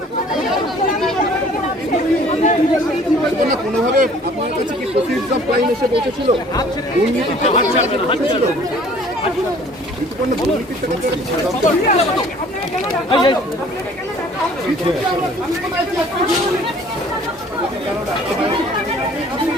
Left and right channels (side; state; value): both; normal; correlation 0.53